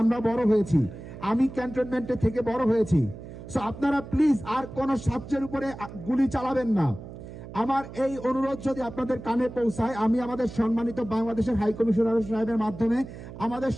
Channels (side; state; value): right; noise; hum, 13 dB below the sound